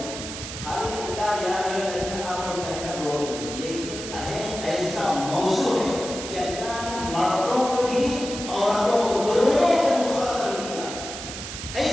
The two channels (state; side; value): noise; right; hiss, 8 dB below the sound